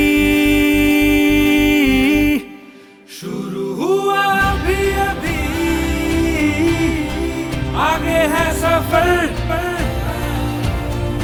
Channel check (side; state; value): both; identical; correlation 1.00